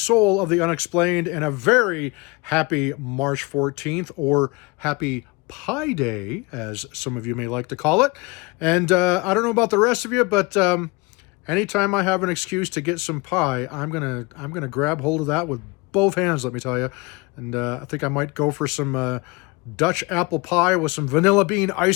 of the Unexplained, and a very happy March 14th, or happy Pie Day, as some of you may like to call it. And I don't know about the rest of you, but anytime I have an excuse to get some pie, I'm gonna grab hold of that with both hands, let me tell you. And I think I might go for some Dutch apple pie with some vanilla bean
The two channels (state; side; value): quieter; right; 26.0 dB